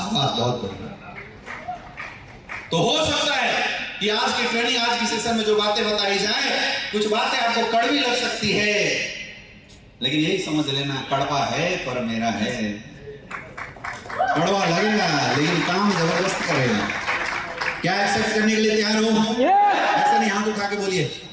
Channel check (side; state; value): both; identical; correlation 1.00